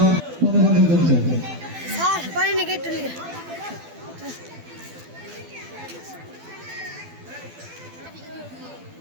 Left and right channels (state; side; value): late; left; 12 ms